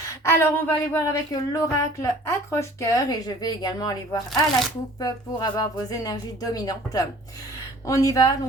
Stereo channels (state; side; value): normal; both; correlation 0.50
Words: Alors, on va aller voir avec l'oracle accroche-cœur et je vais également aller voir à la coupe pour avoir vos énergies dominantes. On y va,